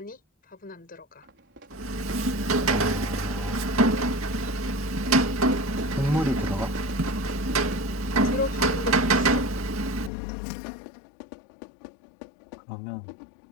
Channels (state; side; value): drops out; right; at 10.1 s